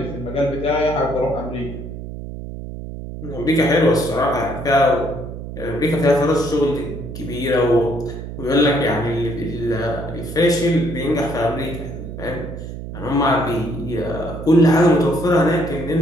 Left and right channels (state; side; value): noise; right; hum, 9 dB below the sound